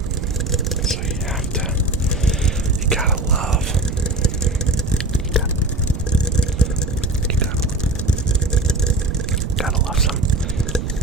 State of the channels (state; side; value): noise; right; rumble, 6 dB below the sound